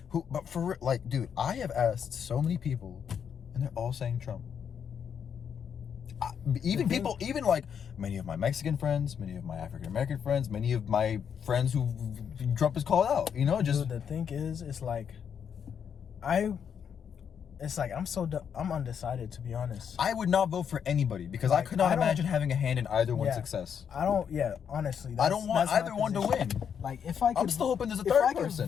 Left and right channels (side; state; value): right; quieter; 7.7 dB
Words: But for like, dude, I have asked so many people, and they're all saying Trump. Even people, even like many of my Mexican friends, many of my African American friends, many of my friends who Trump is called out. You know, just Dude, the thing is, it's like, I'm undecided, to be honest. I would not vote for anybody because I Like, could not I don't- imagine having a hand in either one's Yeah. success. Honestly, I don't want that's my either one to position. win. Like, if I could, I'm still hoping there's a if third I could